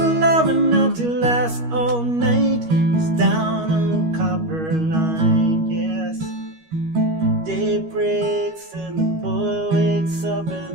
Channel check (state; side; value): late; left; 13 ms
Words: love enough to last all night. It's down on Copper Line, yes. Day breaks and the boy wakes up